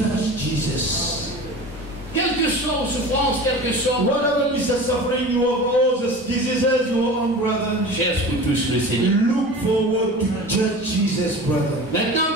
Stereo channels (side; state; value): both; normal; correlation 0.35